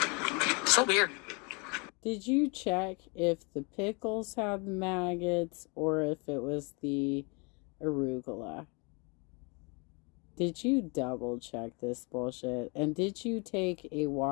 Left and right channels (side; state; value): right; quieter; 31.7 dB